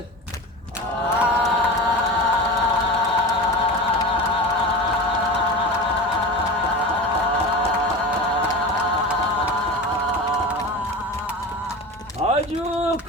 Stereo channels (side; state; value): both; normal; correlation 0.29